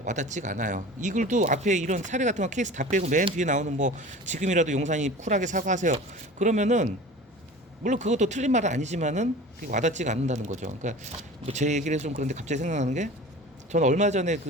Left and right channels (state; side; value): normal; both; correlation 0.38